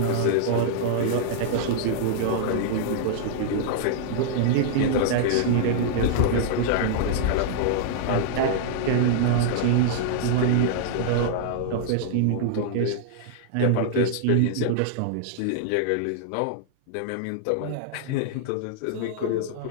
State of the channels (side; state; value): both; different; correlation -0.01